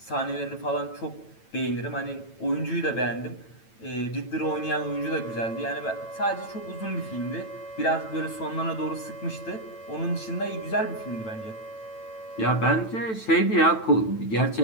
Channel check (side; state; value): right; late; 9.0 ms